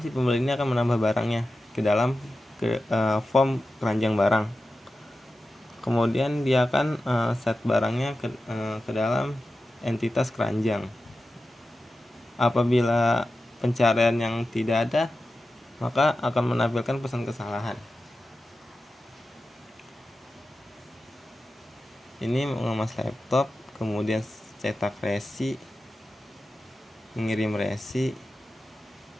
si pembeli ini akan menambah barangnya ke dalam form keranjang barang. Kemudian dia akan set barangnya ke dalam entitas keranjang. Apabila pencarian yang tidak ada, maka akan menampilkan pesan kesalahan. Ini mengemas laptop, kemudian cetak resi, mengirim resi,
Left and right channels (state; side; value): normal; both; correlation 0.93